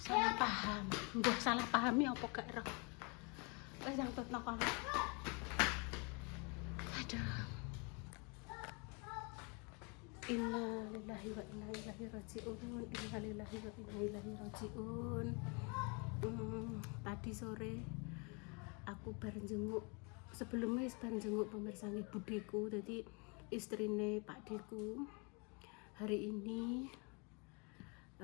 paham. Mbah salah pahami apa gak ero? Wis nyangkutno kono. Aduh. Innalillahi wa inna ilaihi rajiun. Tadi sore aku bareng jenguk sebelumnya bareng jenguk pemirsa nggih budeku, jadi istrine Pak Deku. Hari ini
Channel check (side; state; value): right; quieter; 32.4 dB